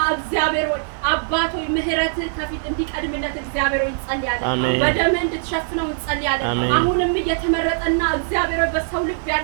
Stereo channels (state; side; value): silent; left; 58 dB below the other